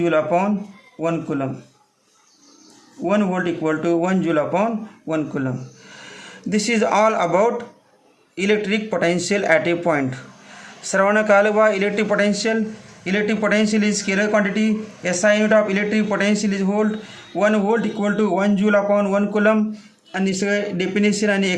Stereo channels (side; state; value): both; identical; correlation 1.00